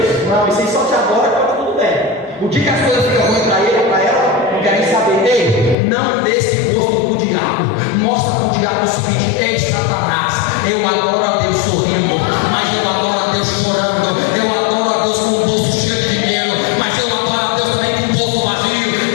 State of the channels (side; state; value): right; drops out; at 5.8 s